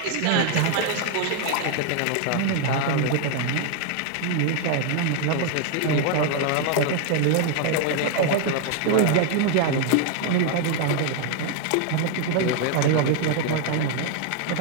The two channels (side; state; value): both; different; correlation 0.00